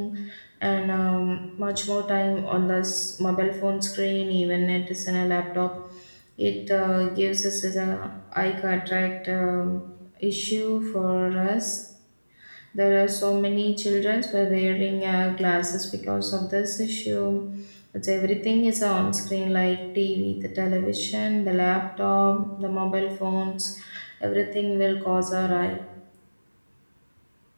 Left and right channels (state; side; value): inverted; both; correlation -1.00